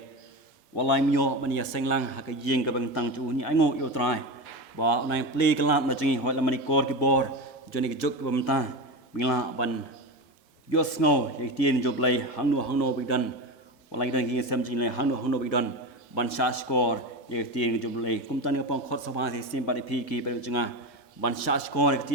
walai myo ban ya seng lang ha ka yeng ka bang tang chu ni ai ngo yu trai ba nai play kala na jingi hoi la mani kor ki bor joni ki jok bam ta mila ban yo sngo ye ti ni job lai hang no bi dan walai dan ki sam jing lai hang no bi dan ban sha score ye ti ni job lai kum tan ni pong khot sa ba sai sin pari pi ki pari janga ban sha score ke ti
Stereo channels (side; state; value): both; normal; correlation 0.21